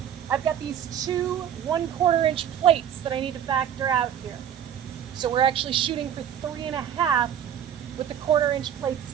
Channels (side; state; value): left; quieter; 9.5 dB